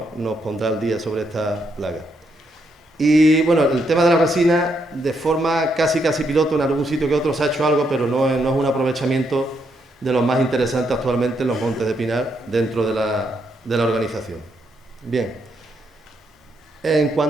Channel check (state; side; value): normal; both; correlation 0.77